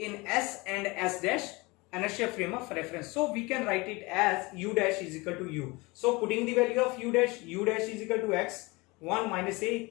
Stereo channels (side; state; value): right; quieter; 24.5 dB